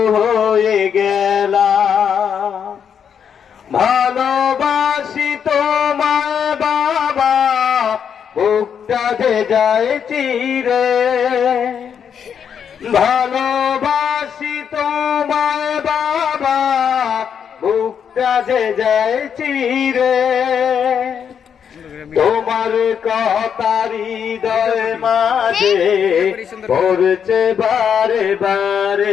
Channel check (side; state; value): right; quieter; 7.7 dB